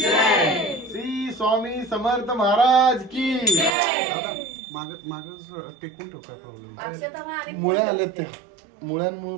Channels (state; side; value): drops out; left; at 3.7 s